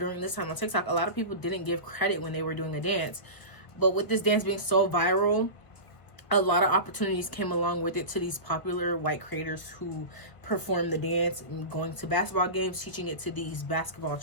this time on TikTok, a lot of people didn't give credit when they were doing a dance. But with this dance being so viral, a lot of opportunities came along with it to these popular white creators who perform the dance, and going to basketball games, teaching it to these basketball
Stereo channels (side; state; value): right; late; 1.3 ms